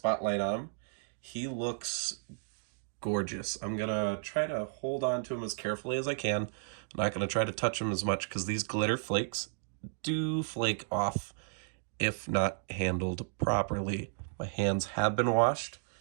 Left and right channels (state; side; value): silent; left; digital silence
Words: on him, he looks gorgeous. I'm going to try to hold on to him as carefully as I can. I'm not going to try to touch him as much because these glitter flakes do flake off if not handled properly. My hands have been washed